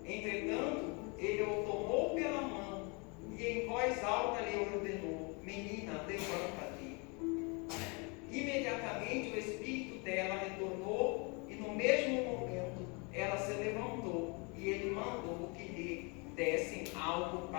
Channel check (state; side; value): quieter; right; 31.5 dB